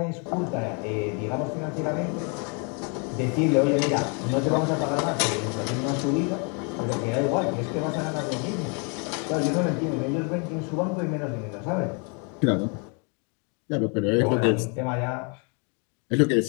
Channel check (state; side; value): quieter; right; 36.0 dB